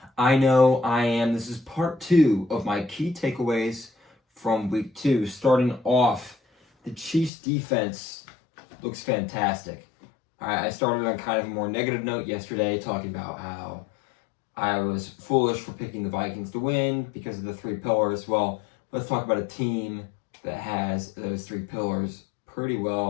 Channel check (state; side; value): drops out; right; at 7.3 s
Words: I know I am. This is part 2 of my key takeaways from week 2. Starting off, the Chiefs defense looks fantastic. I started on kind of a more negative note yesterday, talking about how I was foolish for picking the Vikings to win because of the 3 pillars. Well, let's talk about a team that has those 3 pillars pretty